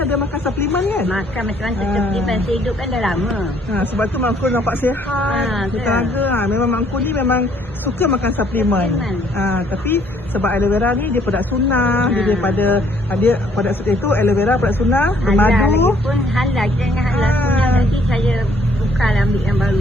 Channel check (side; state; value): both; normal; correlation 0.63